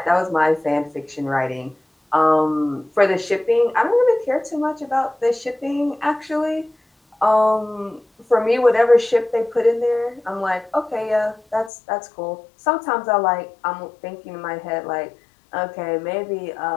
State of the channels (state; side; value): drops out; right; at 11.7 s